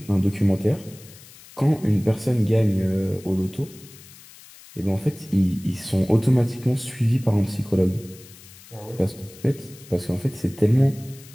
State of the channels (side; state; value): left; noise; hiss, 21 dB below the sound